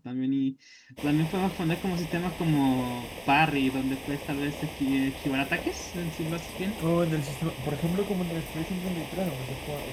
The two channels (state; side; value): identical; both; correlation 1.00